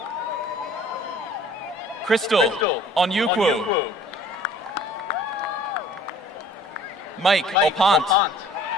Crystal Onyukwu. Mike Opant.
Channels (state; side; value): normal; both; correlation 0.52